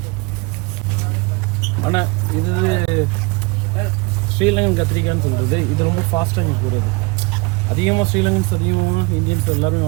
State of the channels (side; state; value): left; quieter; 26.9 dB